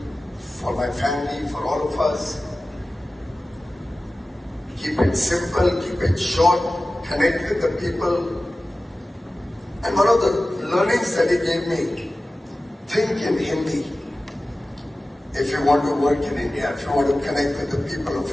for my family, for all of us. Keep it simple, keep it short, connect with the people. And one of the learnings that he gave me, think in Hindi if you want to work in India, if you want to connect with the people of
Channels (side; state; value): both; normal; correlation 0.96